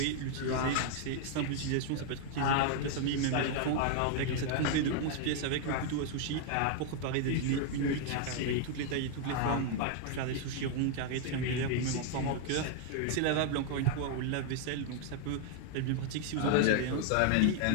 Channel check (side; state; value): both; different; correlation 0.00